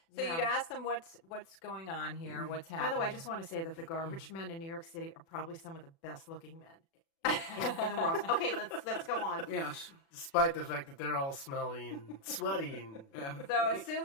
So you'd ask them what's going on here, what's happening. By the way, I just want to say that the garbage men in New York City are probably some of the best looking men in the world. Okay, let's go on. Yes. Despite the fact that they're all smelly and sweaty. And So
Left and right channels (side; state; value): right; late; 36 ms